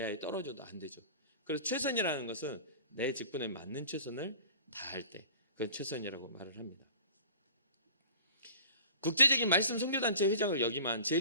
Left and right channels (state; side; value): inverted; both; correlation -0.43